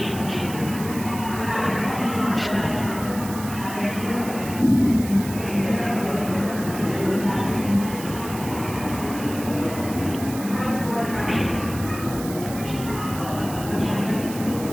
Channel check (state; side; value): noise; right; hiss, 12 dB below the sound